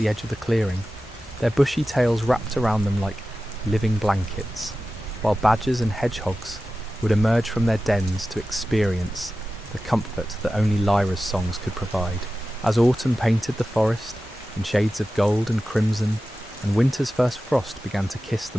edge of the clearing, their bushy tails wrapped around them like living blankets, while badgers and hedgehogs would emerge from their dens to experience the comfort that only Lyra's songs could provide. As autumn painted the forest in shades of gold and crimson, and winter's first frost began to kiss the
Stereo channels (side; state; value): both; normal; correlation 0.94